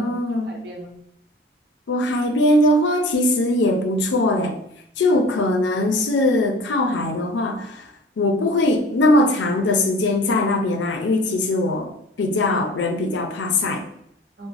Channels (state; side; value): normal; both; correlation 0.43